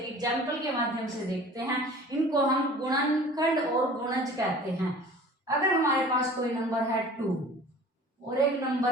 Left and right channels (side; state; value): both; normal; correlation 0.45